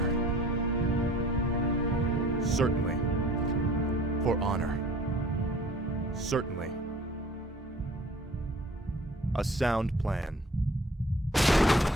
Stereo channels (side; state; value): both; normal; correlation 0.49